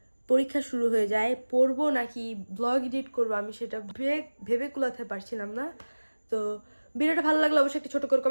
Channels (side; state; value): both; inverted; correlation -1.00